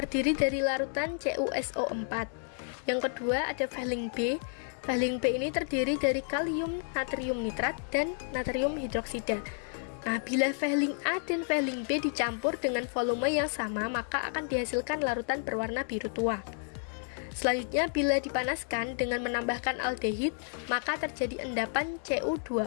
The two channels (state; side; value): silent; right; 57 dB below the other